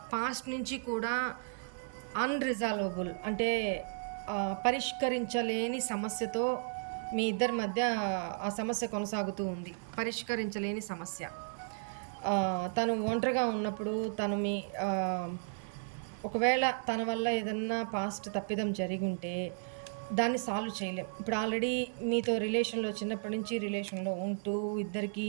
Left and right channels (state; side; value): silent; left; 55 dB below the other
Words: పాస్ట్ నుంచి కూడా అన్రిజాల్వబుల్, అంటే పరిష్కరించలేని సమస్యతో మీ ఇద్దరి మధ్య ఆ సమస్య కొనసాగుతూ ఉంది. పరిష్కరించలేని సమస్య. తను ఒంటరిగా ఉన్నప్పుడు తను ఒకవేళ తన వల్ల ఏదన్నా పాస్ట్ తప్పిదం జరిగుంటే దాన్ని సాల్వ్ చేయలేం. ఇప్పుడు ఆల్రెడీ మీతో రిలేషన్‌లో చిన్నప్పటి నుంచి రిలేషన్‌లో ఉంటూ ఇద్దరికీ